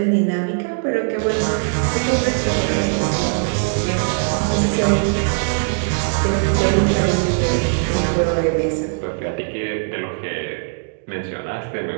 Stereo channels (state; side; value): silent; left; digital silence